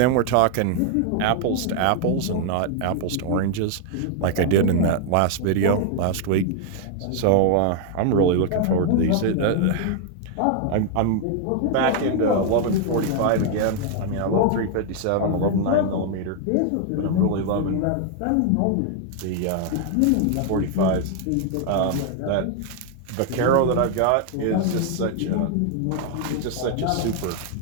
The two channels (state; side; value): different; both; correlation 0.00